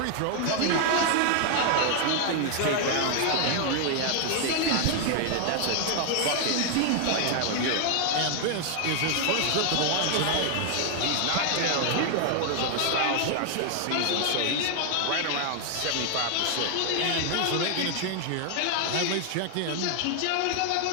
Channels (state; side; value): different; both; correlation 0.00